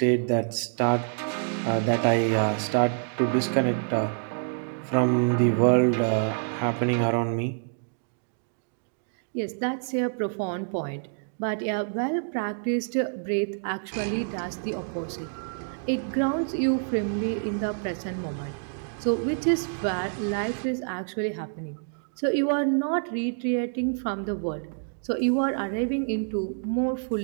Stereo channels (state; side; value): silent; left; digital silence